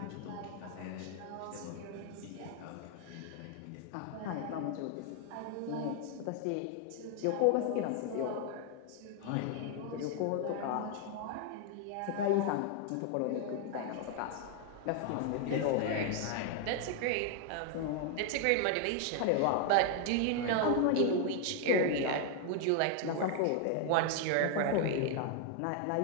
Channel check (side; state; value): both; different; correlation 0.00